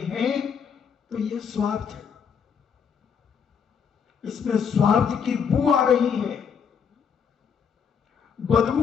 है तो ये स्वार्थ है, इसमें स्वार्थ की बू आ रही है, बदबू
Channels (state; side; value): quieter; right; 6.9 dB